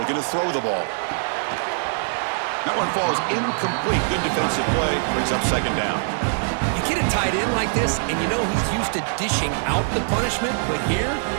to throw the ball. That one falls incomplete. Good defensive play, brings up second down. You get a tight end like this, and you know he's used to dishing out the punishment, but here,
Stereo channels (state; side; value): silent; left; digital silence